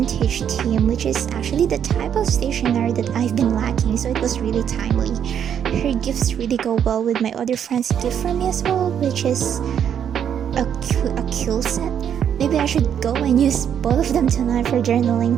theme, which is actually the type of stationery that I've been lacking, so it was really timely. Her gifts really go well with my other friend's gift for me as well, which is a kill set. Maybe I should go and use both of them tonight for journaling.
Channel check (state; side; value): quieter; left; 8.8 dB